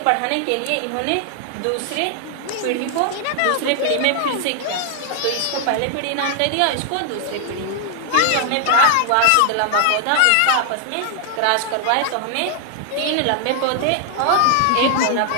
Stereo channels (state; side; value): different; both; correlation 0.00